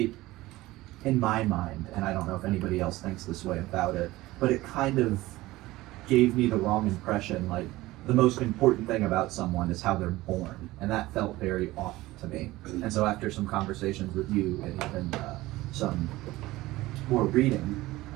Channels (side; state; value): left; quieter; 18.3 dB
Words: in my mind, and I don't know if anybody else thinks this way about it, but it kind of gave me the wrong impression. Like, the most important thing about someone is how they're born, and that felt very off to me. And so after some conversations with you and even some more reading,